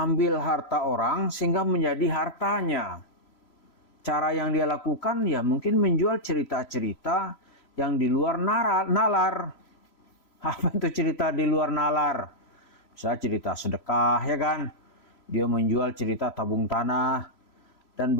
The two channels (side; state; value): right; late; 4.0 ms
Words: harta orang sehingga menjadi hartanya. Cara yang dia lakukan ya mungkin menjual cerita-cerita yang di luar nalar. Apa itu cerita di luar nalar? Misalnya cerita sedekah ya kan. Dia menjual cerita tabung tanah. Dan